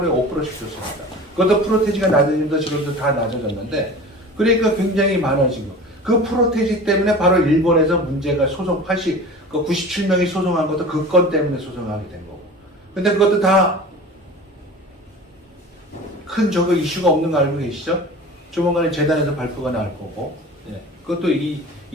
5%씩 줬습니다. 그것도 프로테지가 낮아지면서 지금도 다 낮아졌는데, 그러니까 굉장히 많아지고, 그 프로테지 때문에 바로 일본에서 문제가 소송 97명이 소송한 것도 그 건 때문에 소송하게 된 거고. 근데 그것도 다 큰 저거 이슈가 없는 거 알고 계시죠? 조만간에 재단에서 발표가 나올 거고, 예. 그것도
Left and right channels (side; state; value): both; normal; correlation 0.37